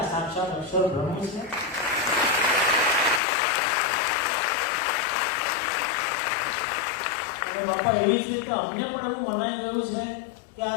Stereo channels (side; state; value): right; drops out; at 3.2 s